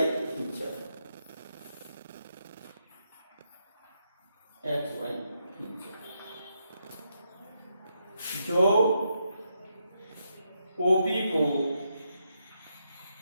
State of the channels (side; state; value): both; inverted; correlation -0.81